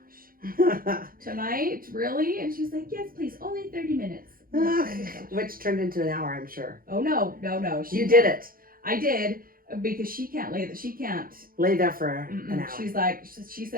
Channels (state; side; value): late; left; 0.42 ms